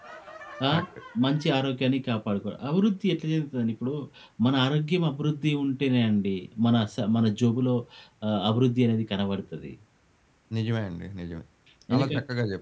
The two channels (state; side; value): identical; both; correlation 1.00